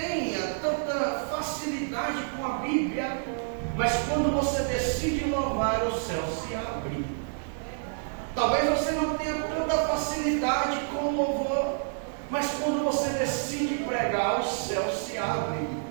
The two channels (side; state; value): left; silent; digital silence